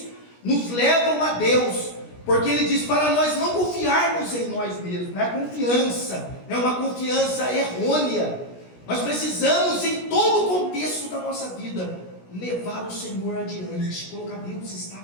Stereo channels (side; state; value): right; late; 17 ms